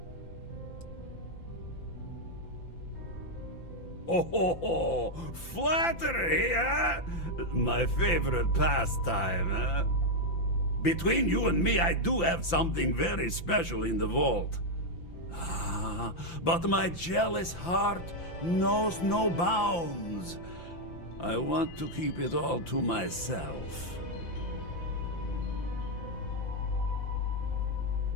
Oh, flattery, huh? My favorite pastime, huh? Between you and me, I do have something very special in the vault. Ah, but my jealous heart knows no bounds. I want to keep it all to myself.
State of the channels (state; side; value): late; right; 5.9 ms